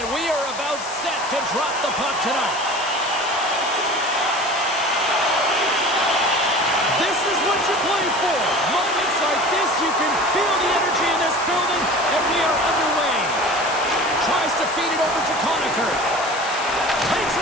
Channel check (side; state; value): left; noise; hiss, 12 dB below the sound